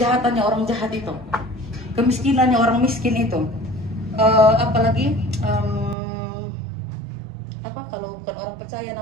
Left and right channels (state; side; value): drops out; left; at 6.0 s